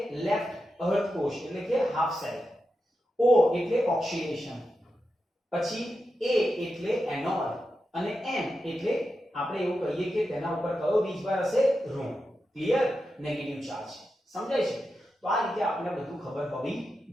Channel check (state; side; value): normal; both; correlation 0.89